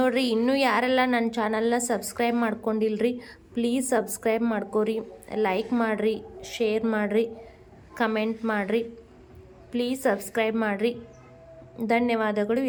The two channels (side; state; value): both; identical; correlation 1.00